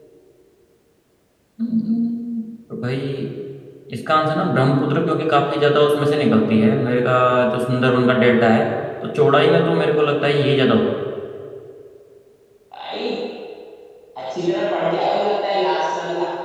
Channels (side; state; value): both; identical; correlation 1.00